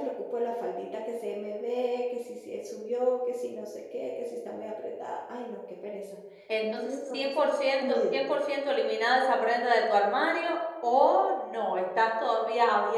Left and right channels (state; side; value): identical; both; correlation 1.00